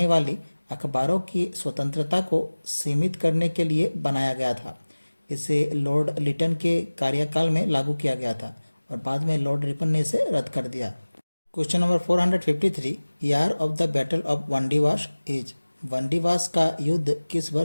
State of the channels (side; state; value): both; inverted; correlation -1.00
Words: वाली अखबारों की स्वतंत्रता को सीमित करने के लिए बनाया गया था। इसे लॉर्ड लिटन के कार्यकाल में लागू किया गया था और बाद में लॉर्ड रिपन ने इसे रद्द कर दिया। Question number 453। Year of the battle of Wandiwash is. Wandiwash का युद्ध किस